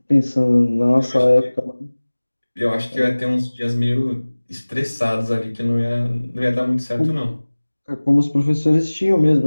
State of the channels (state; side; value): inverted; both; correlation -1.00